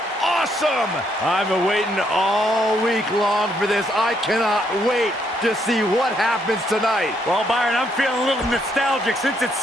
awesome. I've been waiting all week long for this. I cannot wait to see what happens tonight. Well, Byron, I'm feeling a little nostalgic. Since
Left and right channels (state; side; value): normal; both; correlation 0.73